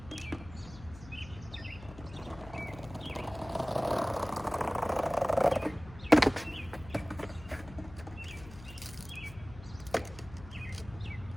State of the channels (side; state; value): left; noise; hum, 17 dB below the sound